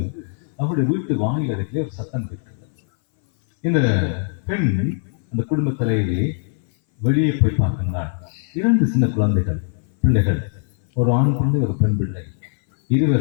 அவருடைய வீட்டு வாயில் அருகிலே ஒரு சத்தம் கேட்கின்றது. இந்த பெண் அந்த குடும்ப தலைவியை வெளியே போய் பார்க்கின்றாள். 2 சின்ன பிள்ளைகள், ஒரு ஆண் பிள்ளை, ஒரு பெண் பிள்ளை.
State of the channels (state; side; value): silent; right; 60 dB below the other